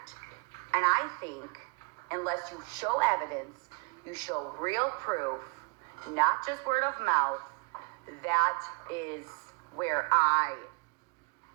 And I think unless you show evidence, you show real proof, not just word of mouth, that is where I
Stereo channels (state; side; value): quieter; left; 30.4 dB